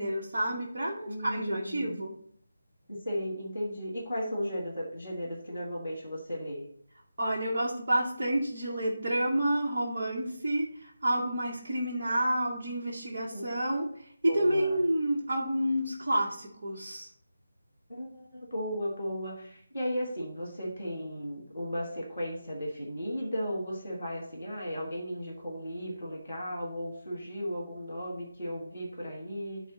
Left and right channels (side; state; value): both; inverted; correlation -0.91